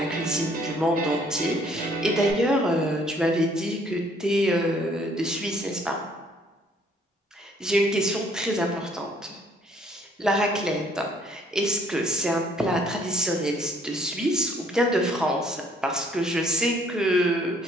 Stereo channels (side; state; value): both; normal; correlation 0.62